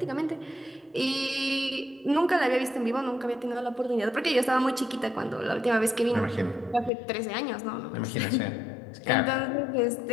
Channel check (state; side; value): drops out; right; at 6.9 s